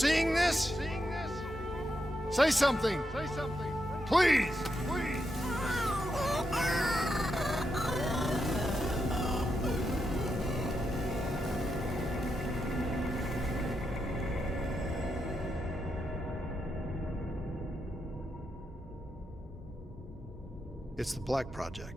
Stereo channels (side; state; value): both; normal; correlation 0.84